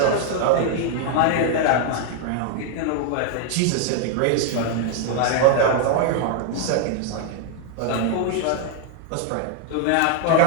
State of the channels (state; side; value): different; both; correlation 0.00